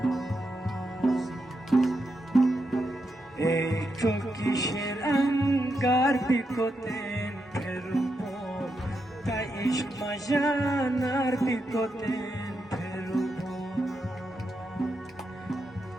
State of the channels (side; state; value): both; normal; correlation 0.84